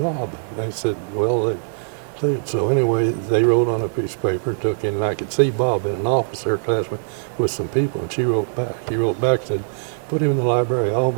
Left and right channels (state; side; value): silent; left; digital silence